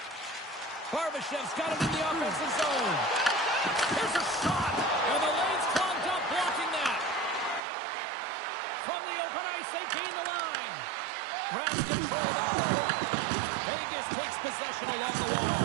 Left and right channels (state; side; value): drops out; left; at 7.6 s